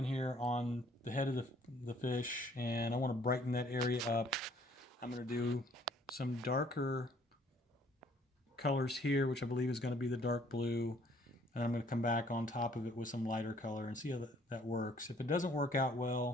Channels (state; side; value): normal; both; correlation 0.61